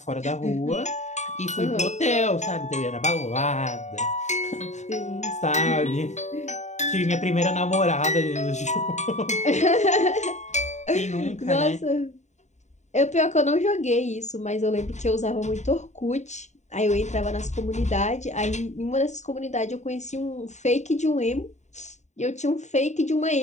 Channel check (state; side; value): late; right; 0.34 ms